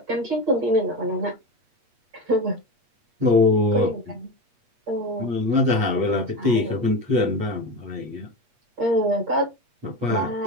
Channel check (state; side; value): late; left; 8.4 ms